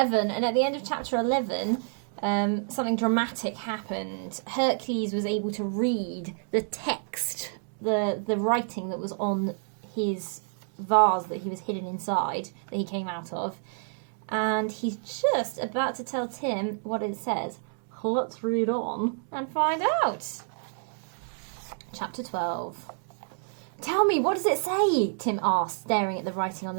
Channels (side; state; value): left; silent; digital silence